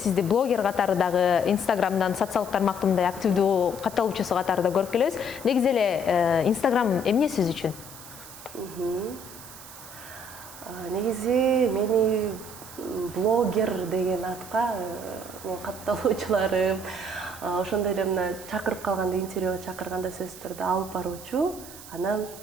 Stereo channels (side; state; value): right; noise; hiss, 16 dB below the sound